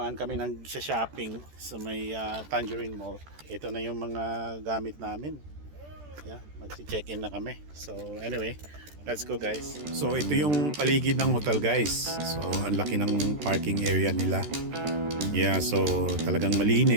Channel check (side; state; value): left; late; 14 ms